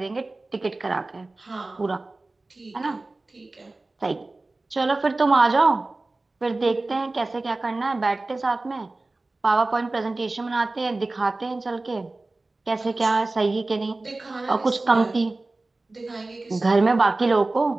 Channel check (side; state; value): left; quieter; 3.1 dB